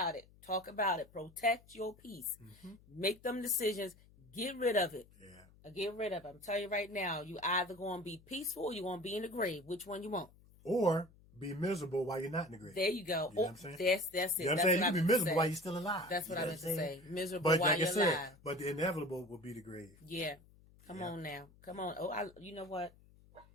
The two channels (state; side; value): noise; left; hum, 26 dB below the sound